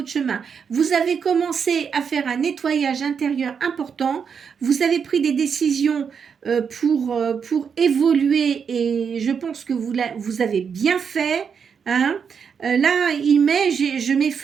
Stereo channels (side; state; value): left; quieter; 6.6 dB